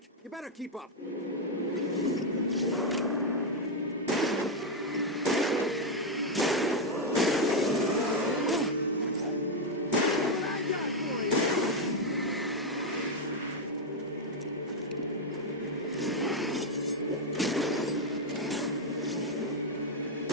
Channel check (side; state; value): both; normal; correlation 0.02